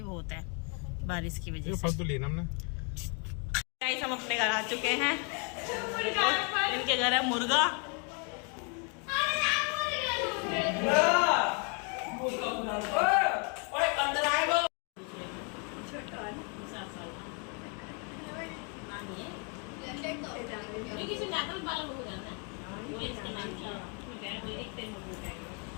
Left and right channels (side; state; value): right; quieter; 37.2 dB